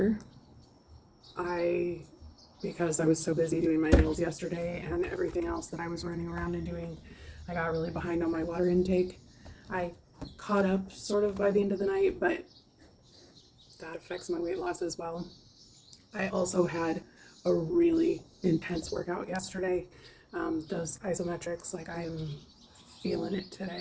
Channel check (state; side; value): identical; both; correlation 1.00